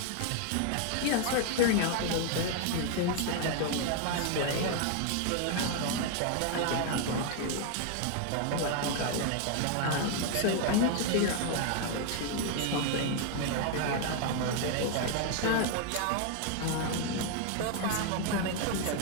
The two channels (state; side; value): different; both; correlation 0.00